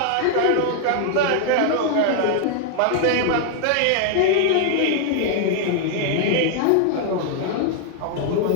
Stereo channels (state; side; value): different; both; correlation 0.00